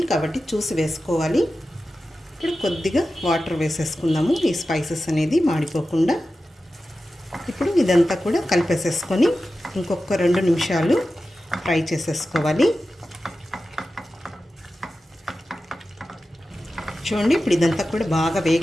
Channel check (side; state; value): both; normal; correlation 0.93